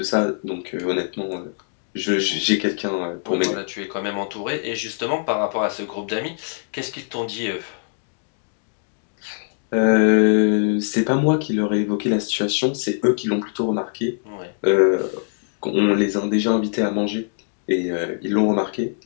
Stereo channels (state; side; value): silent; right; digital silence